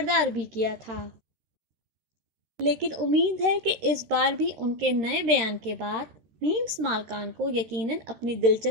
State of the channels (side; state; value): left; late; 13 ms